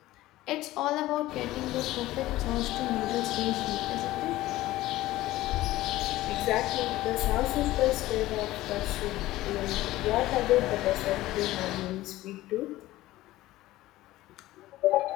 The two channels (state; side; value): quieter; right; 16.6 dB